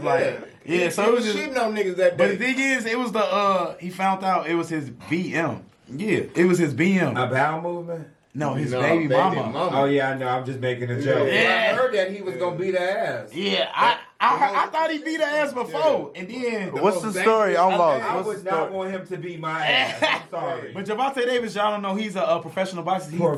like, yeah. So it was just. shitting on niggas that But the day. thing is, it was the he found out it was his BM. Yeah, it was his BM. A bowel movement? No, his No, baby mama. Oh, yeah, I know. I'm just making a joke. Yeah. I heard that he was going to beat her ass. Yeah, I thought he beat her ass before, and then. What's the story? I'm lost. I What's would the not story? want him to beat my ass. I'm sorry. But Javante Davis, y'all don't know, he's a professional boxer.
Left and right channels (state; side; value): identical; both; correlation 1.00